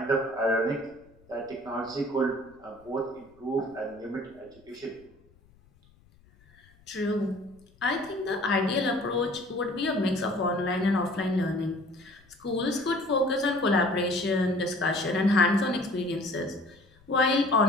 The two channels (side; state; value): left; noise; rumble, 29 dB below the sound